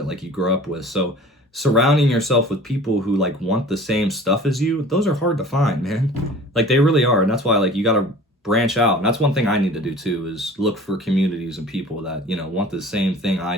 like, you grew up with. So surrounding yourself with people who like want the same stuff as you, those are hard to find, man. Like, they really are. And that's why, like, you got to branch out. And that's one thing I need to do too, is look for communities and people that want the same thing I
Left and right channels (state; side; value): normal; both; correlation 0.44